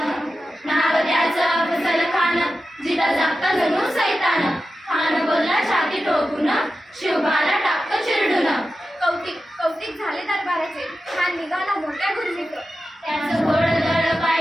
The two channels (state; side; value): normal; both; correlation 0.92